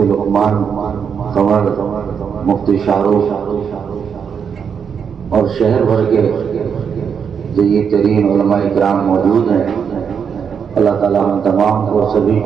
لقمان قمر، مفتی شاہ رخ اور شہر بھر کے جدید ترین علماء کرام موجود ہیں۔ اللہ تعالیٰ ہم تمام کو سبھی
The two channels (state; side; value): quieter; left; 7.0 dB